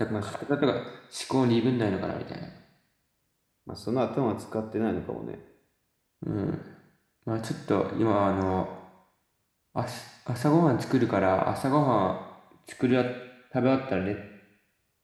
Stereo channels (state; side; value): identical; both; correlation 1.00